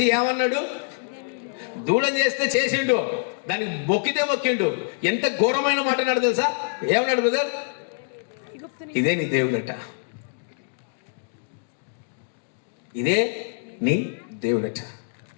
ఏమన్నాడు? దూడం చేస్తే చేసిండు, దానికి మొక్కితే మొక్కిండు. ఎంత ఘోరమైన మాట అన్నాడు తెలుసా? ఏమన్నాడు బ్రదర్? ఇదే నీ దేవుడట, ఇదే నీ దేవుడట.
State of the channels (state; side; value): silent; right; digital silence